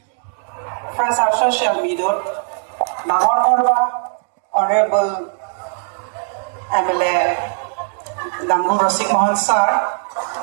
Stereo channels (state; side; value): silent; left; 58 dB below the other